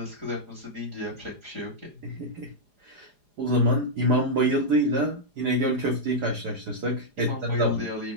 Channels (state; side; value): late; left; 4.9 ms